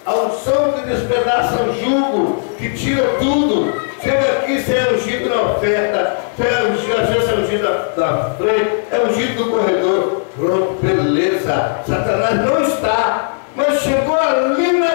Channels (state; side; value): silent; right; digital silence